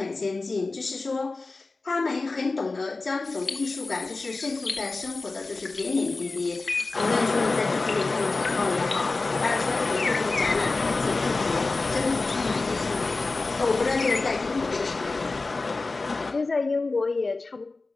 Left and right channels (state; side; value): quieter; right; 3.6 dB